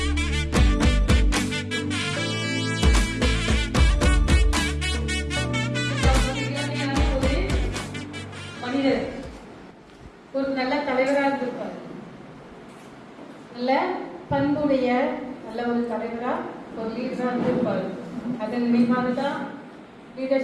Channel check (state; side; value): identical; both; correlation 1.00